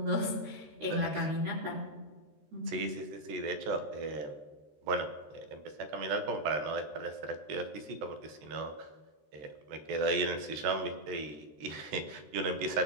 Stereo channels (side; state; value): left; late; 13 ms